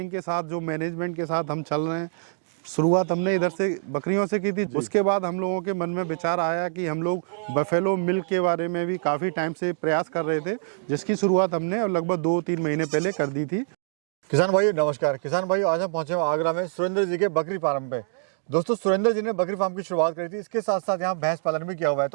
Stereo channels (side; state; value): left; silent; digital silence